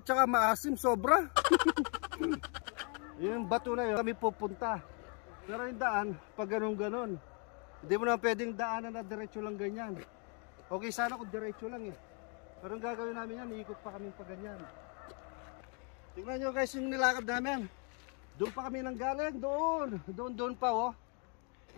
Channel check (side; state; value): right; quieter; 37.7 dB